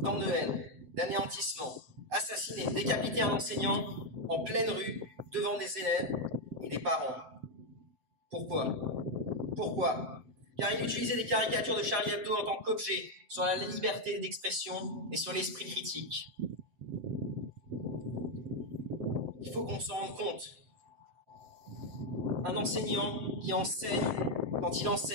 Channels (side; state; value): left; late; 7.7 ms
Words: Tant de haine, d'anéantissement, assassiner, décapiter un enseignant en pleine rue, devant des élèves et des parents. Pourquoi? Pourquoi? Car il utilisait des caricatures de Charlie Hebdo en tant qu'objet sur la liberté d'expression et sur l'esprit critique. Il faut qu'on s'en rende compte. Un enseignant qui enseigne, quand il